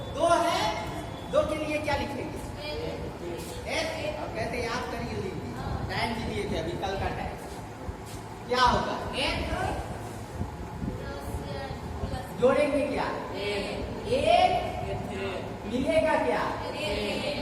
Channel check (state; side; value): identical; both; correlation 1.00